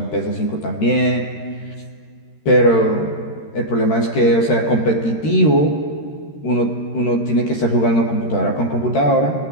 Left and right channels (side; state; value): right; late; 13 ms